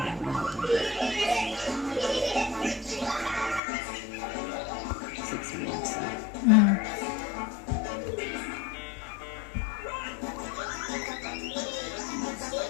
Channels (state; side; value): drops out; right; at 3.6 s